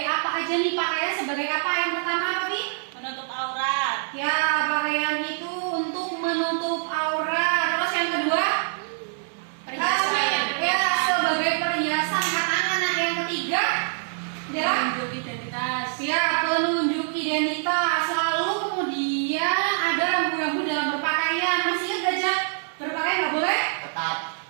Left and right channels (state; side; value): silent; left; digital silence